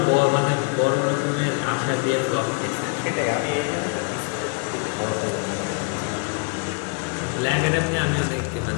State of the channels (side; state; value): right; quieter; 35.7 dB